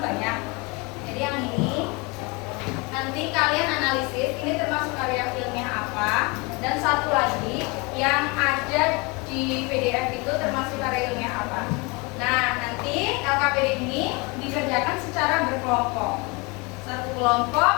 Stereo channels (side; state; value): right; quieter; 27.8 dB